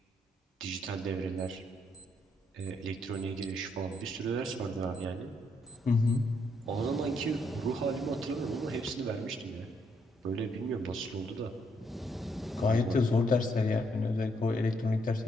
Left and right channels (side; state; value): both; normal; correlation 0.74